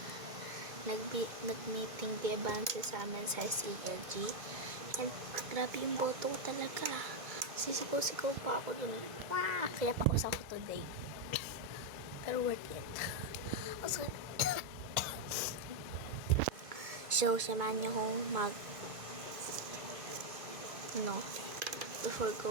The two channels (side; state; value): left; late; 2.0 ms